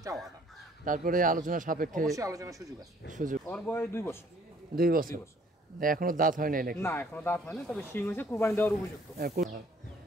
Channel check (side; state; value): both; normal; correlation 0.59